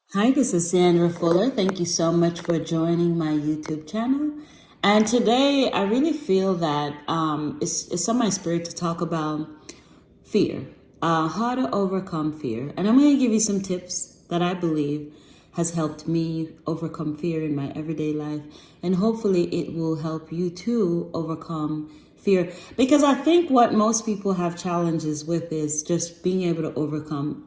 Hi, this is Sandra Fuller. Thank you so much for joining my YouTube channel. And today I really feel that it's on my spirit to talk about fear, how to overcome fear. And I'm going to give you some tips that I believe has helped me overcome fear in my everyday life. And hopefully it will help you too overcome fear. Because I think what most people have challenges with is just being able to overcome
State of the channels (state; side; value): identical; both; correlation 1.00